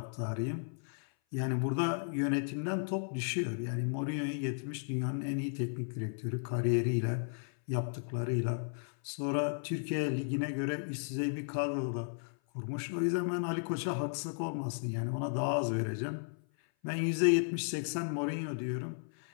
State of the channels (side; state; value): right; silent; 55 dB below the other